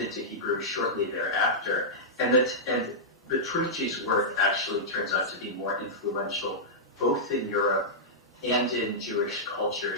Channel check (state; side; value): normal; both; correlation -0.11